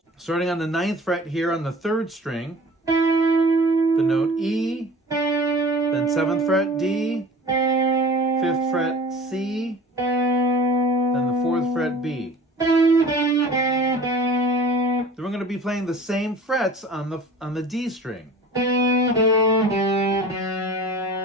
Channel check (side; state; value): both; normal; correlation 0.42